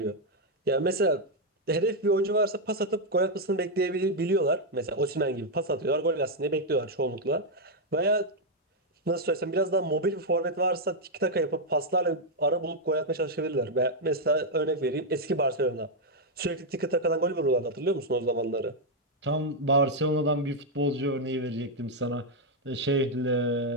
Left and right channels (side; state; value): both; normal; correlation -0.01